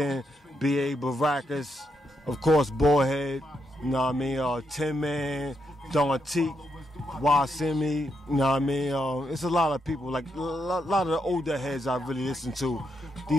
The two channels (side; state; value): both; normal; correlation 0.81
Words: B.A. Baracus, of course Bullhead, you know what I mean, Tin Man, Don Teak, Wasimi, you know what I mean? It's a lot of people, like a lot of the older heads I really listen to.